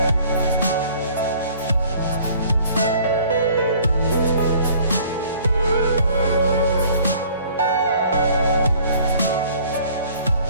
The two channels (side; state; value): both; inverted; correlation -0.53